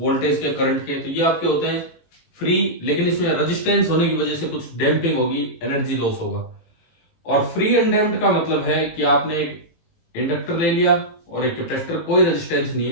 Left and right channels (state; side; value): late; right; 18 ms